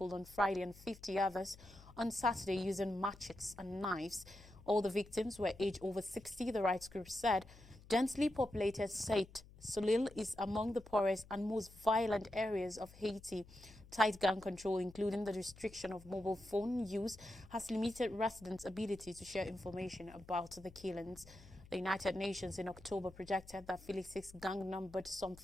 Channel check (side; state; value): left; noise; hum, 21 dB below the sound